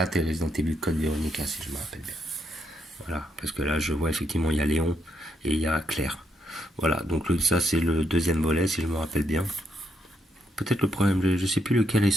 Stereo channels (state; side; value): normal; both; correlation 0.77